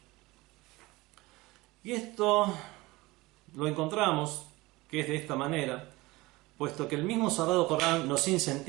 Y esto lo encontramos que es de esta manera, puesto que el mismo Sagrado Corán nos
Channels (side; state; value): left; quieter; 21.2 dB